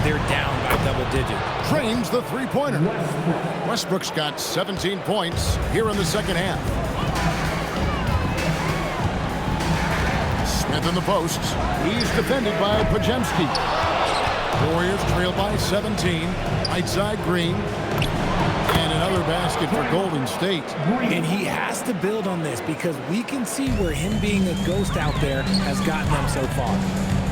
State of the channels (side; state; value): both; identical; correlation 1.00